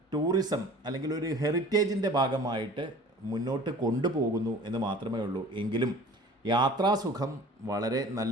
ടൂറിസം അല്ലെങ്കിൽ ഒരു ഹെറിറ്റേജിൻ്റെ ഭാഗമായിട്ട് മുന്നോട്ട് കൊണ്ടുപോകുന്നു എന്ന് മാത്രമേ ഉള്ളൂ. എങ്കിലും യാത്രാസുഖം വളരെ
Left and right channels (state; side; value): normal; both; correlation 0.45